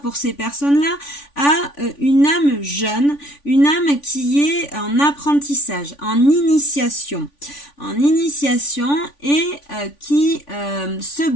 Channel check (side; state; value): right; late; 3.5 ms